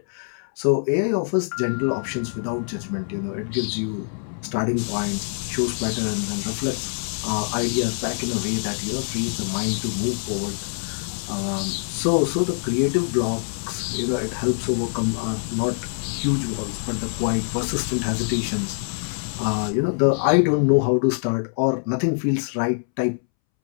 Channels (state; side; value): silent; right; 62 dB below the other